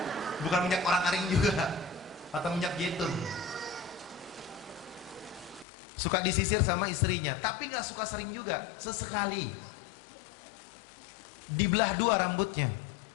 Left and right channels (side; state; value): right; drops out; at 5.7 s